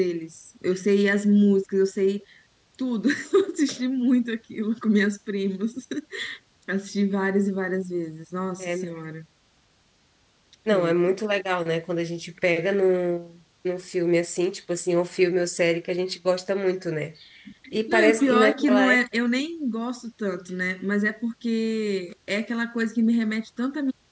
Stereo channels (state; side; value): identical; both; correlation 1.00